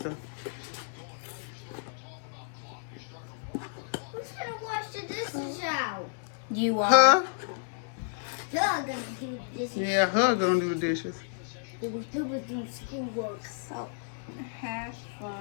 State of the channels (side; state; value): right; silent; digital silence